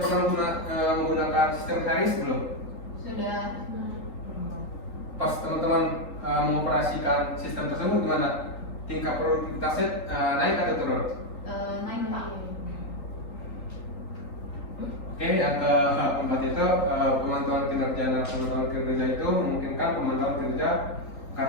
pernah menggunakan sistem HRIS belum? Sudah. Pas teman-teman mengoperasikan sistem tersebut gimana? Tingkat produktivitasnya naik atau turun? Naik Pak. Oke, yang keempat itu pemantauan kinerja. Nah, pemantauan kinerja itu memungkinkan pemantauan kinerja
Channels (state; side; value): late; right; 3.8 ms